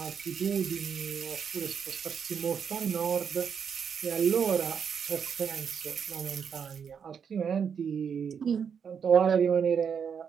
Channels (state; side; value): quieter; left; 7.0 dB